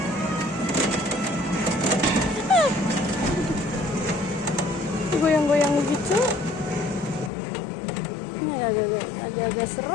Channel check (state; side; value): drops out; right; at 7.3 s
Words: Goyang-goyang begitu. Ini agak-agak